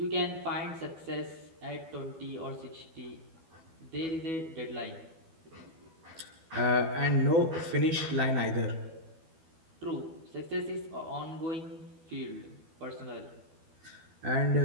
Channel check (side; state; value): left; late; 12 ms